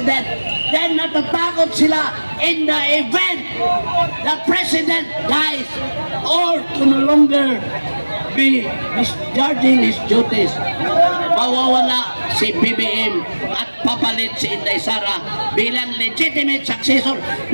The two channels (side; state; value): both; inverted; correlation -1.00